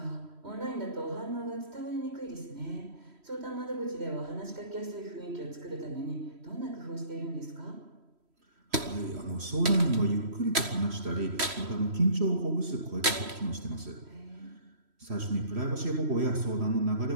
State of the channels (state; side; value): late; left; 3.1 ms